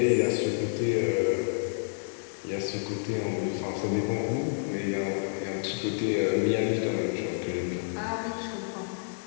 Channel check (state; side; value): silent; right; digital silence